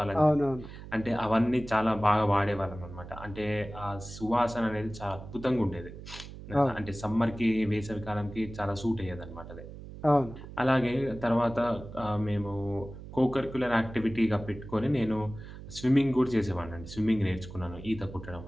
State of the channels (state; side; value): noise; right; hum, 13 dB below the sound